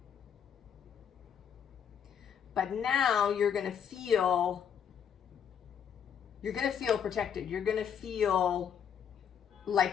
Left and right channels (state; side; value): quieter; right; 8.1 dB